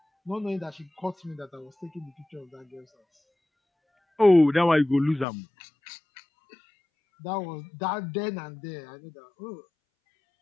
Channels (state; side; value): drops out; right; at 5.2 s